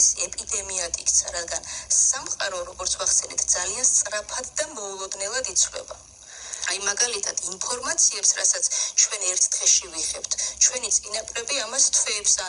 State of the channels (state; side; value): identical; both; correlation 1.00